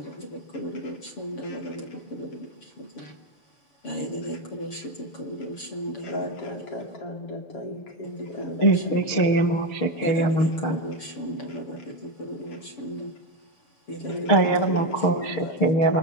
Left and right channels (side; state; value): right; late; 7.1 ms